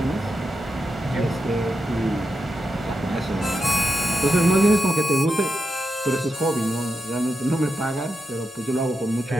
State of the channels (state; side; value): normal; both; correlation 0.87